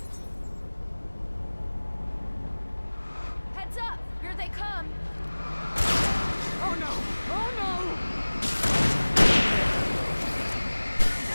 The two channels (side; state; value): both; inverted; correlation -1.00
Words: Heads up! Here they come. Oh no! Oh no!